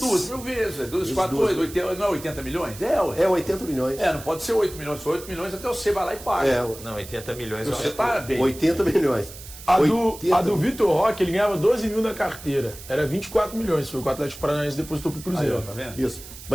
mil vezes. 2, 4, 8, 80, não é 80 milhões? É, ué. É 80 milhões. Não pode ser 8 milhões. Se for 8 milhões, até você vai lá e paga. É, Não, 80 milhões. Você tá bem. 80 milhões. A 80 do Vitor Roque, ele ganhava 12 mil na carteira. Era 24 milhões. Foi o que o Atlético Paranaense depositou pro Aí, Cruzeiro. ó, tá vendo? Isso.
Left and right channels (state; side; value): noise; right; hiss, 15 dB below the sound